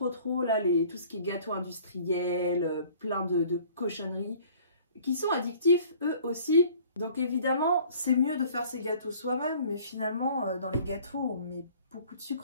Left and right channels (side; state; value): both; inverted; correlation -0.52